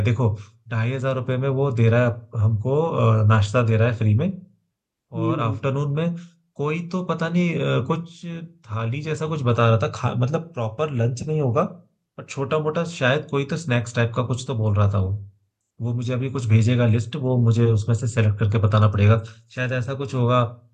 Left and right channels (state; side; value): identical; both; correlation 1.00